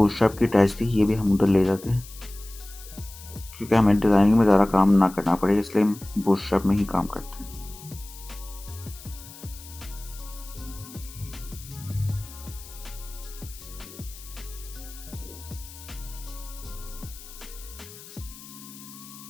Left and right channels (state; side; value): noise; left; hiss, 17 dB below the sound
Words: की अटैच थी, ये भी हम उधर ले जाते हैं, क्योंकि हमें डिज़ाइनिंग में ज़्यादा काम ना करना पड़े, इसलिए हम बूटस्ट्रैप में ही काम करते हैं।